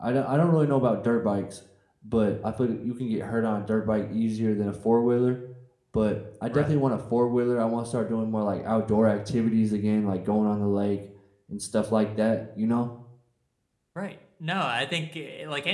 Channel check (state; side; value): identical; both; correlation 1.00